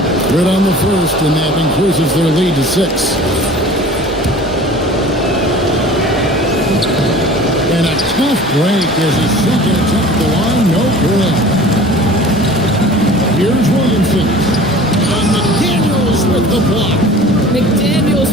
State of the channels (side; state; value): both; normal; correlation 0.43